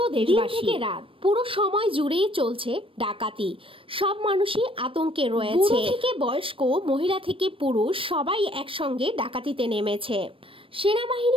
দেশবাসী। থেকে রাত পুরো সময় জুড়েই চলছে ডাকাতি। সব মানুষই আতঙ্কে রয়েছে, থেকে বয়স্ক, মহিলা থেকে পুরুষ সবাই একসঙ্গে ডাকাতিতে নেমেছে।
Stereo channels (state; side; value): late; left; 0.26 ms